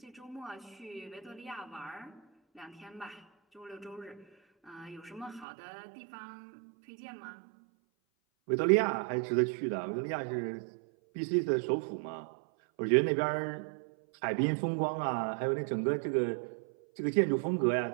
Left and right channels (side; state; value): left; drops out; at 5.5 s